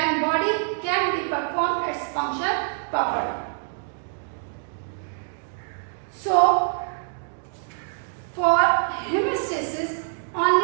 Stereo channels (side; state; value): left; silent; digital silence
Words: body can be performed its function properly. So for hemostasis,